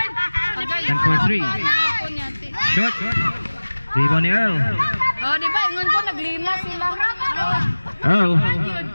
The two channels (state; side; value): inverted; both; correlation -1.00